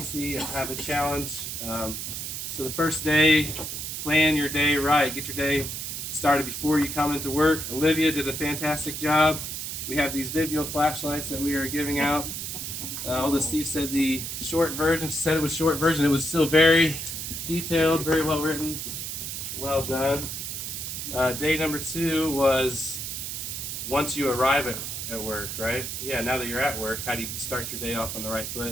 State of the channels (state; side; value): noise; right; hiss, 5 dB below the sound